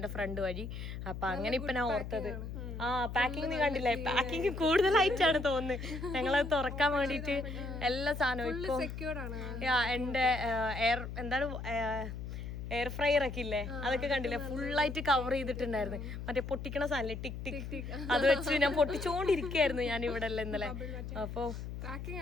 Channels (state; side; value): noise; left; hum, 7 dB below the sound